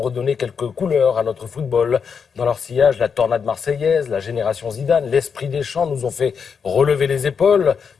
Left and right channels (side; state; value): right; quieter; 6.3 dB